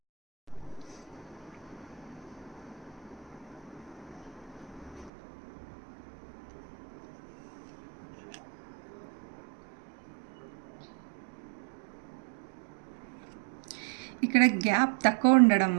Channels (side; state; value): left; drops out; at 5.1 s